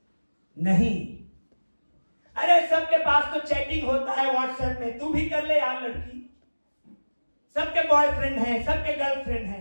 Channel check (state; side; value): inverted; both; correlation -1.00